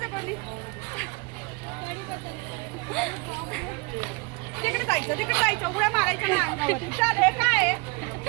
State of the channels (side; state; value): left; quieter; 27.9 dB